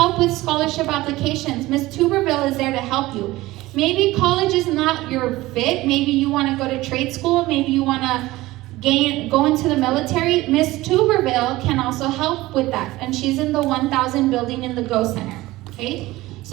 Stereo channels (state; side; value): quieter; left; 18.3 dB